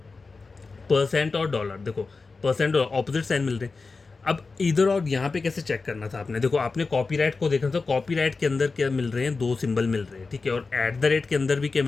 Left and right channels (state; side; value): quieter; right; 4.1 dB